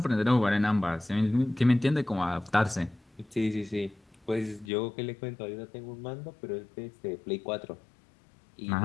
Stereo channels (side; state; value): right; drops out; at 4.7 s